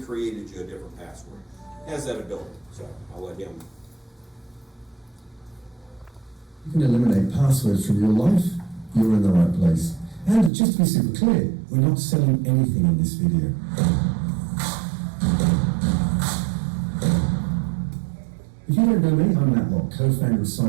created you a different password. It has that ability, so I'll let him. You can eliminate passwords from your life. You're in the right place. And just to be super clear, we're not selling anything in this video. If you don't know me, I'm Matt Locke, co-founder of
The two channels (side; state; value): left; drops out; at 10.5 s